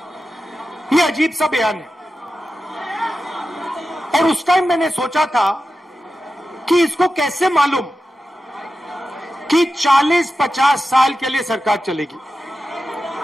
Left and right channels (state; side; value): normal; both; correlation 0.92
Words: ये अजीब सा बयान है। और उस टाइम मैंने सोचा था कि इसको कैसे मालूम कि 40-50 साल के लिए सरकार चलेगी।